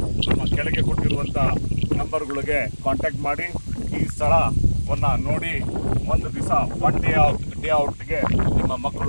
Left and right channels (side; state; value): both; inverted; correlation -1.00